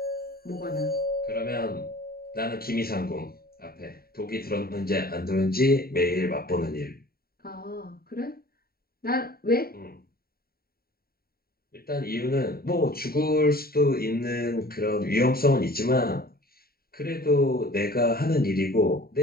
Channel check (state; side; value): late; right; 0.44 ms